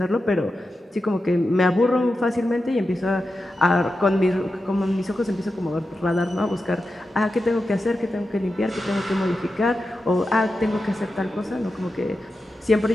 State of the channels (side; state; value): both; normal; correlation 0.90